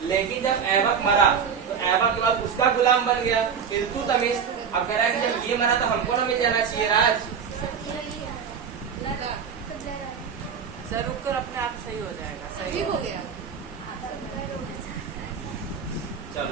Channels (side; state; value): left; quieter; 6.8 dB